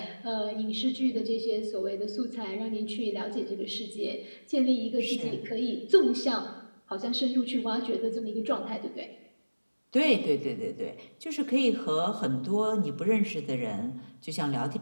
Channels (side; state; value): both; inverted; correlation -1.00